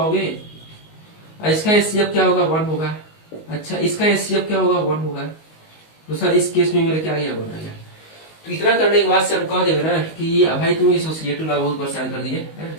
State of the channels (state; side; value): late; right; 19 ms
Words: इसका एचसीएफ क्या होगा? 1 होगा। अच्छा, इसका एचसीएफ क्या होगा? 1 होगा। तो सर इस केस में मेरा क्या गया? 1 आ गया। तो इतना करने के बाद से हम कह देंगे ना कि भाई तुम एसोसिएटिव लॉ बहुत परेशान कर दिए,